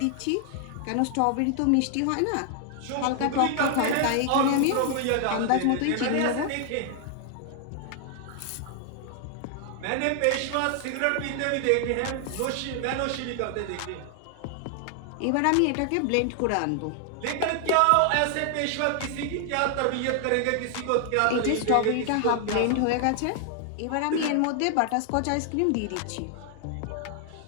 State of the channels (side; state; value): both; different; correlation 0.00